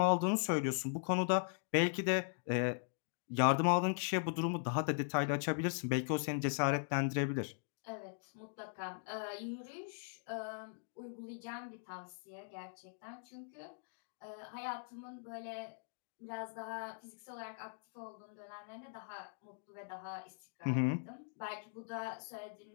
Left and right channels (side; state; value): right; silent; digital silence